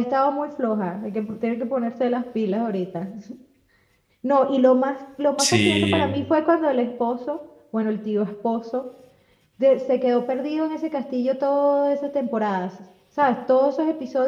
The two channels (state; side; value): identical; both; correlation 1.00